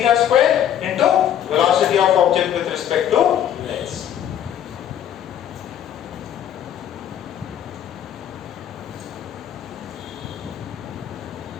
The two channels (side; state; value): right; quieter; 10.2 dB